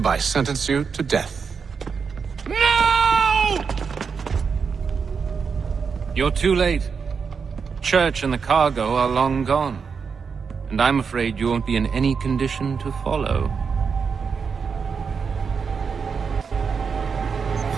sentence you to death. No! You're too late. Church and the cargo are long gone. And I'm afraid you won't be in any condition to follow.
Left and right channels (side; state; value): left; quieter; 5.8 dB